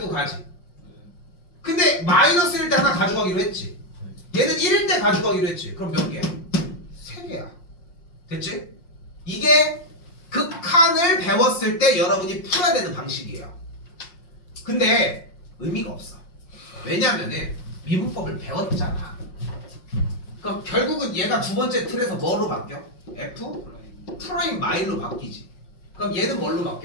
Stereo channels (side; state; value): right; late; 5.6 ms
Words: 가지. 근데 마이너스 1일 때 하나 가져가기로 했지. 얘는 1일 때 가져가기로 했지. 그럼 몇 개야? 3개야. 됐지? 이게 극한을 배웠을 때 여러분이 풀어야 되는 방식이에요. 근데 의미가 없어. 왜냐면은 미분법을 배웠잖아. 그럼 결국은 얘가 두 번째 틀에서 뭐로 바뀌어? f 프라임 마일로 바뀌지. 그럼 얘는 뭘로